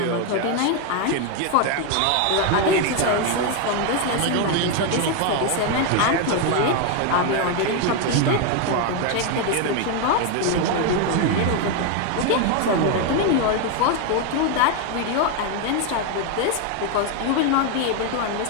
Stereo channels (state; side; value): different; both; correlation 0.01